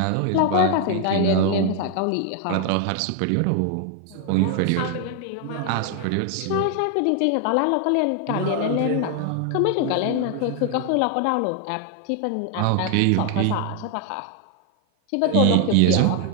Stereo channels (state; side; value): different; both; correlation 0.01